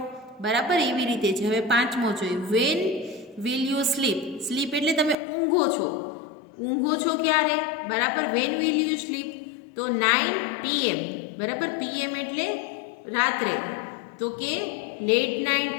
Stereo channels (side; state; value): right; drops out; at 5.2 s